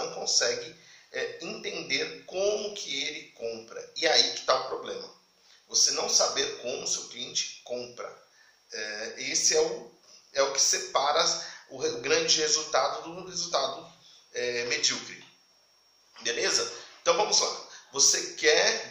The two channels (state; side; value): identical; both; correlation 1.00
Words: consegue entender como que ele compra. E aí que está o problema. Você não saber como o seu cliente compra. Esse é o que separa o grande resultado do resultado medíocre. Beleza? Então vamos lá.